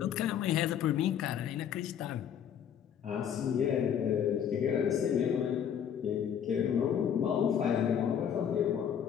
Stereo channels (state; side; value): quieter; right; 8.7 dB